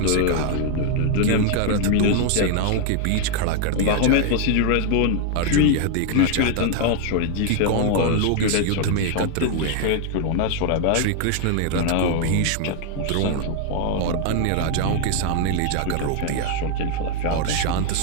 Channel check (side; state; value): both; different; correlation 0.00